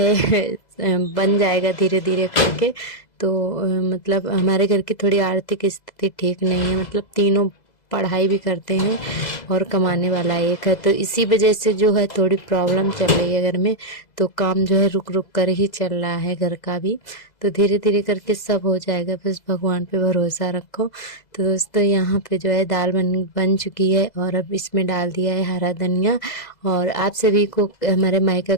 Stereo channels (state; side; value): late; right; 2.0 ms